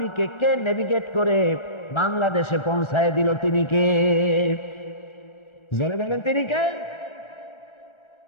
কে নেভিগেট করে বাংলাদেশে পৌঁছায় দিল? তিনি কে? জোরে বলেন, তিনি কে?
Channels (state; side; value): late; right; 1.3 ms